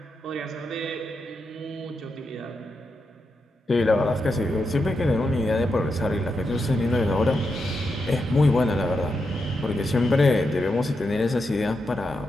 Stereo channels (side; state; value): both; normal; correlation 0.85